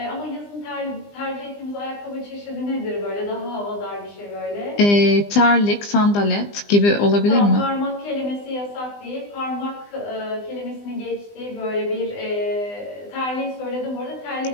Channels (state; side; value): late; right; 20 ms